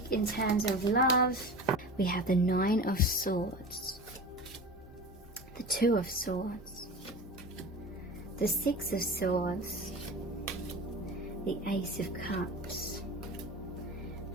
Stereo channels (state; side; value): normal; both; correlation 0.33